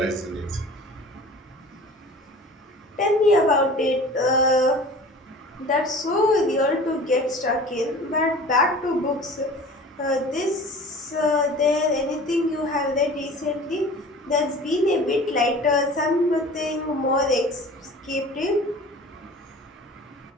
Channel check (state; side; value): normal; both; correlation 0.42